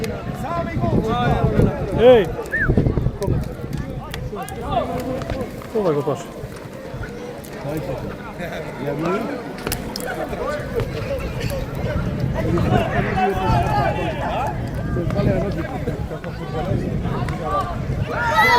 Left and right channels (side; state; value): both; identical; correlation 1.00